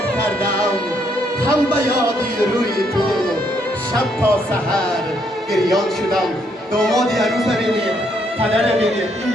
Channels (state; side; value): normal; both; correlation 0.72